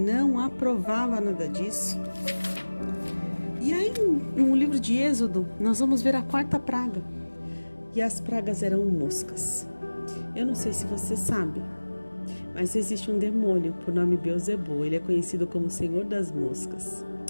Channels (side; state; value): both; inverted; correlation -1.00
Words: aprovava nada disso. E aí no livro de Êxodo nós vamos ver a quarta praga. E as pragas eram moscas. Eu não sei se você sabe, mas existe um demônio por nome Beelzebul. Ele é conhecido como Senhor das Moscas.